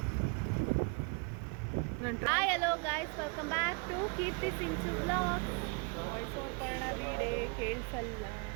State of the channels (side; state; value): left; quieter; 32.7 dB